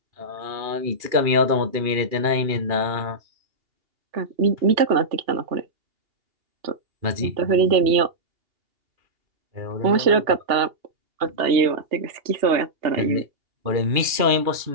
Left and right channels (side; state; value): left; late; 2.8 ms